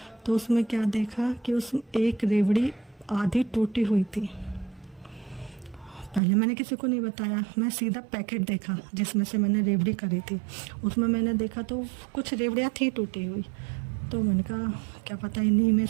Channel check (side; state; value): left; drops out; at 6.2 s